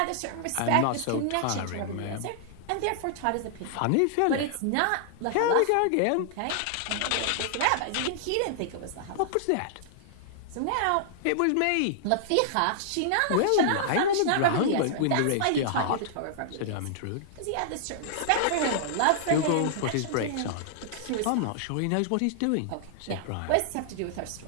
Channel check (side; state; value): both; different; correlation -0.01